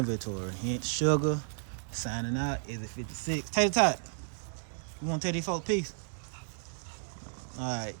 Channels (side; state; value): left; silent; digital silence